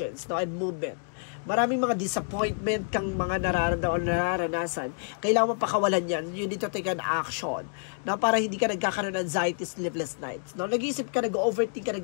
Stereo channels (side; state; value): right; silent; digital silence